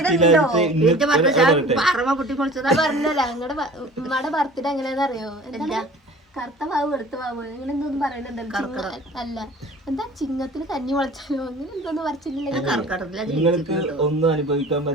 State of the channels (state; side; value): normal; both; correlation 0.44